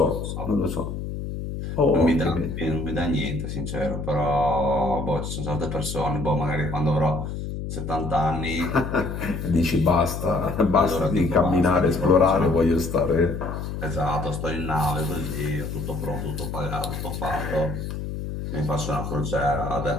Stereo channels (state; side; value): noise; left; hum, 6 dB below the sound